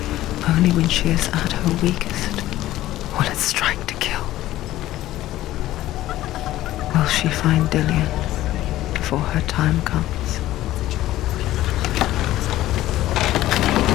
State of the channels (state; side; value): quieter; right; 14.9 dB